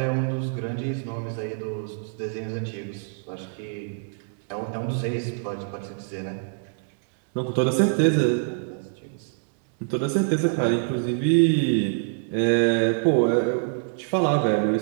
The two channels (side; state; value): left; silent; digital silence